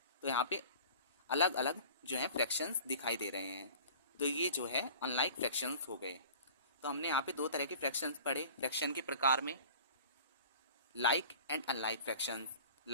तो यहाँ पे अलग अलग जो है फ्रैक्शंस दिखाई दे रहे हैं। तो ये जो है अनलाइक फ्रैक्शंस हो गए। तो हमने यहाँ पे दो तरह के फ्रैक्शंस पढ़े फ्रैक्शन के प्रकार में, like and unlike fractions.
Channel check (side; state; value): both; inverted; correlation -0.43